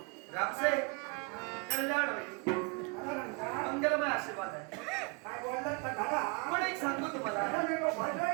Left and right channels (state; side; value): quieter; left; 32.8 dB